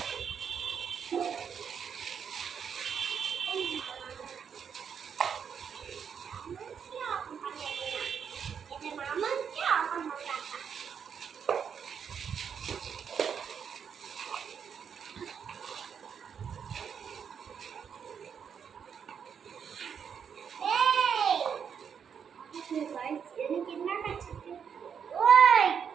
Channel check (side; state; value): left; quieter; 7.3 dB